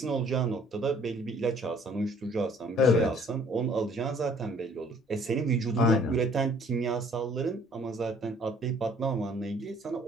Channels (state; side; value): normal; both; correlation 0.57